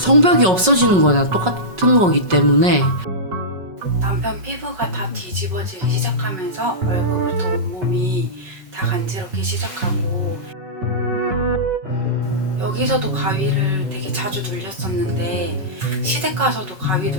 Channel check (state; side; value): late; left; 5.4 ms